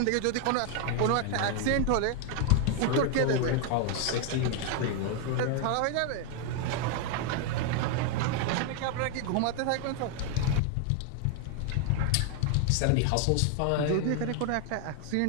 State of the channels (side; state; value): both; different; correlation 0.01